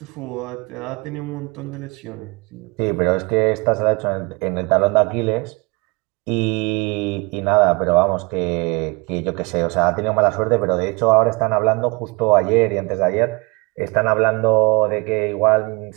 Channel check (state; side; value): quieter; left; 28.2 dB